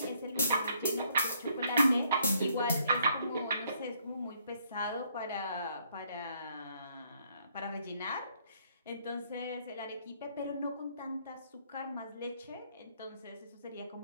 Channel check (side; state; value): both; inverted; correlation -0.68